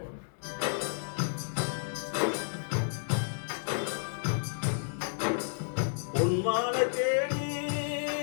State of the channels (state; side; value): silent; right; digital silence